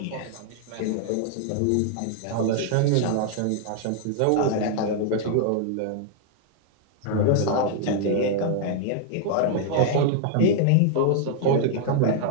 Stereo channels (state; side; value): different; both; correlation 0.00